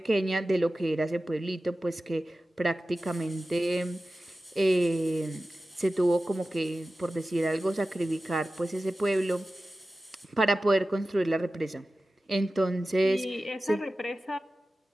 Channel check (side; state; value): both; normal; correlation 0.95